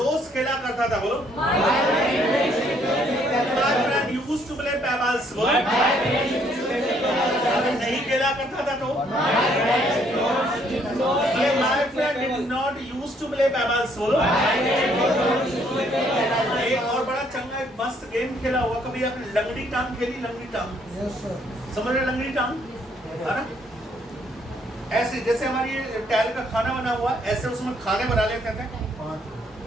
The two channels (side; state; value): both; normal; correlation 0.67